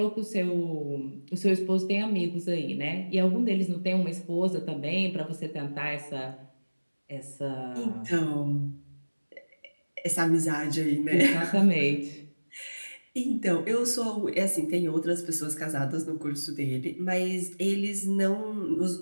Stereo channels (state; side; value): inverted; both; correlation -1.00